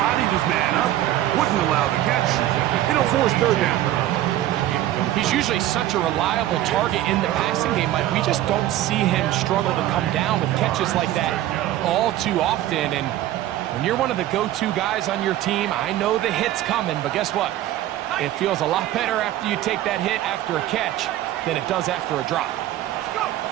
his man up. Wouldn't allow the catch. It'll force third down. He's usually such a reliable target in the passing game, Mike. We just don't see him struggle to come down with catches like that all too often. And when you're one of the go-to guys on your team, I know the hit's coming, but guess what? It feels a lot better after you take that hit after a catch than it does after a drop.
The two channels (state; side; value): quieter; left; 13.8 dB